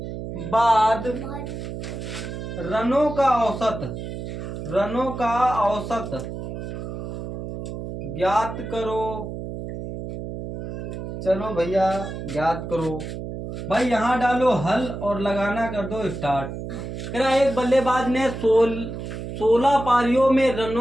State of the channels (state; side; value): noise; right; hum, 7 dB below the sound